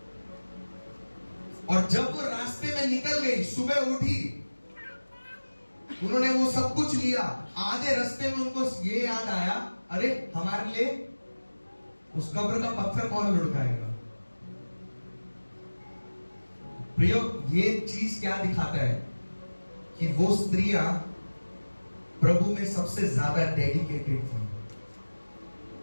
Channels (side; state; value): both; inverted; correlation -1.00